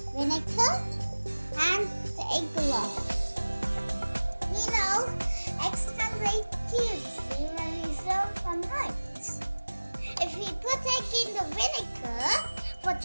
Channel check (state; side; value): inverted; both; correlation -1.00